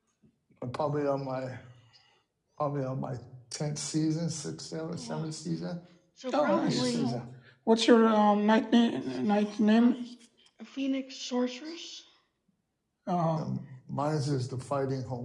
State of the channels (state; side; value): identical; both; correlation 1.00